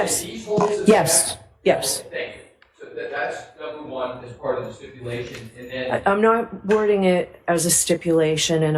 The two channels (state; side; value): identical; both; correlation 1.00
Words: These holes in the yes, back? yes. Thank you. So that's number one as part of the stipulation, and then. I'm not wording it as a stipulation, and